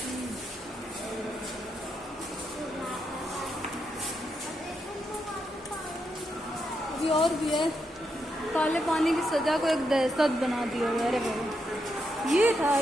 अभी और भी है। काले पानी की सजा को एक दहशत बना दिया है। अरे बाबा, ये था,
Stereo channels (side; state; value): both; normal; correlation 0.82